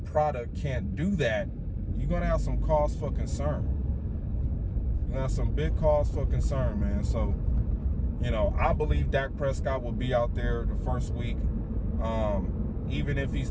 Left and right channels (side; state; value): both; identical; correlation 1.00